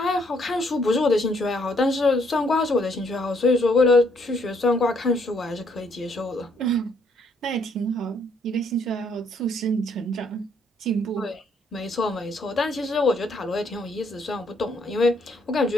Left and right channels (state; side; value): normal; both; correlation 0.69